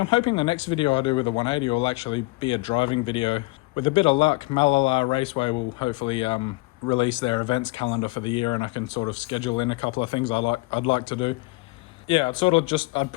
hoping the next video I do with the 180 will actually be a driving video. With a bit of luck, Malala Raceway will hopefully release their events calendar for the year, and I can sort of schedule in a couple of things I'd like to do. Yeah, I'd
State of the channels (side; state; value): right; quieter; 23.9 dB